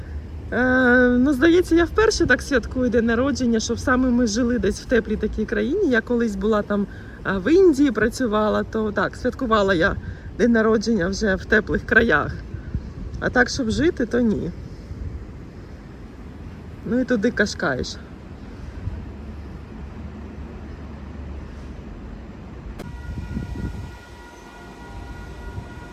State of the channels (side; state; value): both; identical; correlation 1.00